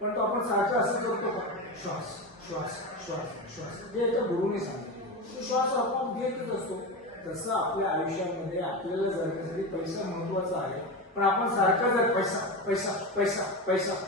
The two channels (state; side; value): normal; both; correlation 0.20